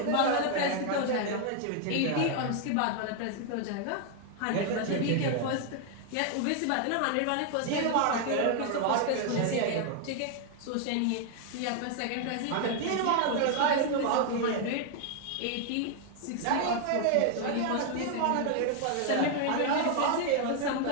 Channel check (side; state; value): both; different; correlation 0.00